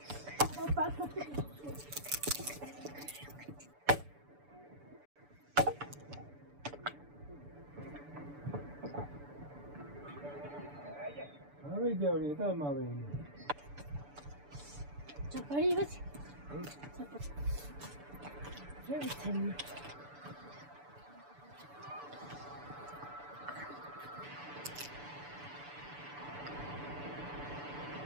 ပဲကြောက်နေတာမှပဲ 这可以不行，这不，这不成。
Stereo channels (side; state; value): left; late; 6.9 ms